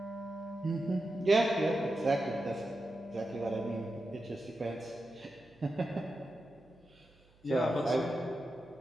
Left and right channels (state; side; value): noise; right; hum, 30 dB below the sound